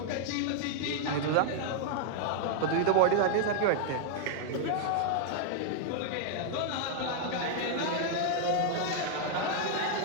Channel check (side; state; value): both; different; correlation 0.00